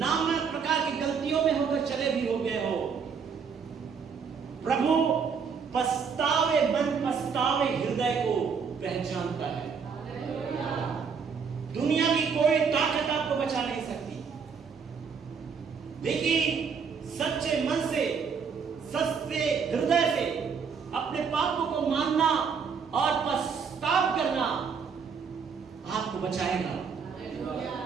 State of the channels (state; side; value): quieter; left; 6.1 dB